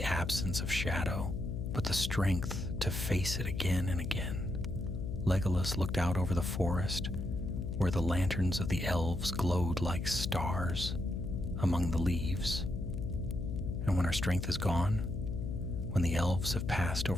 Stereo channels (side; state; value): left; noise; hum, 4 dB below the sound